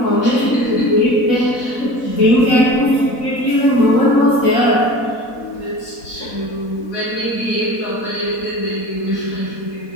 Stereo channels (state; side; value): late; right; 4.1 ms